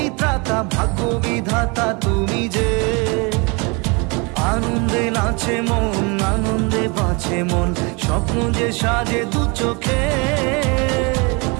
ত্রাতা, ভাগ্য বিধাতা তুমি যে। আনন্দে নাচে মন, আনন্দে বাঁচে মন, স্বপ্ন যে সাজে দু চোখে।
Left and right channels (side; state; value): left; quieter; 29.9 dB